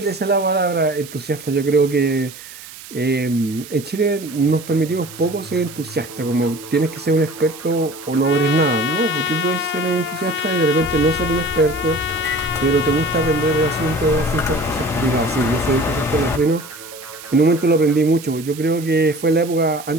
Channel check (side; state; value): right; noise; hiss, 16 dB below the sound